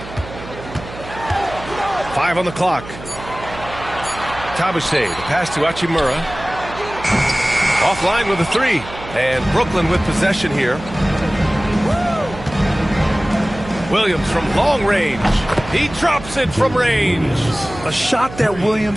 5 on the clock. Tabuse, the pass to Hachimura. Offline with a 3. And Brooklyn with possession here. Williams from long range. He drops it from range. A shot that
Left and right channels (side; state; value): right; noise; hum, 14 dB below the sound